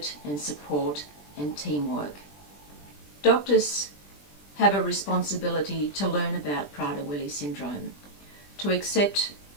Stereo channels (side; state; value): right; late; 20 ms